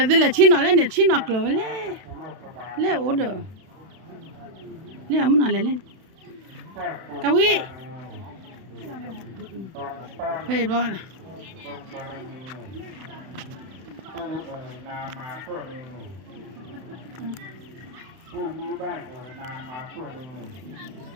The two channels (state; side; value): late; left; 32 ms